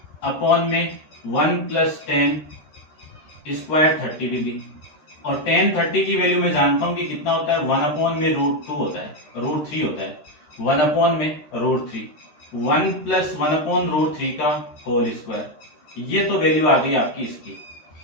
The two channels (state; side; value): late; right; 13 ms